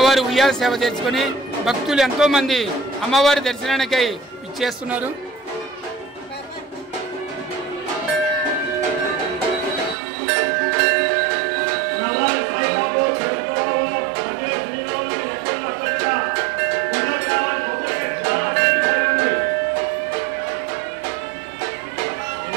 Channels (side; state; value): left; drops out; at 10.0 s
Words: ఉయ్యాల సేవ చేసుకుని భక్తులు ఎంతో మంది అమ్మవారి దర్శనానికై ఇచ్చేస్తున్నారు.